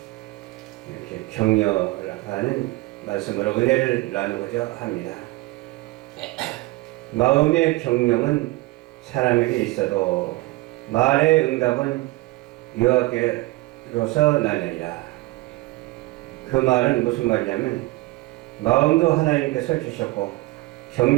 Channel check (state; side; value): quieter; left; 21.1 dB